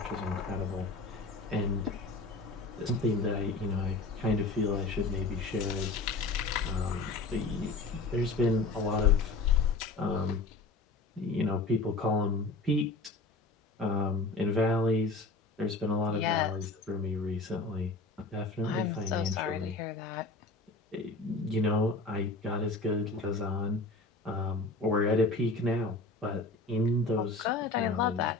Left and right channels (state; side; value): quieter; right; 3.5 dB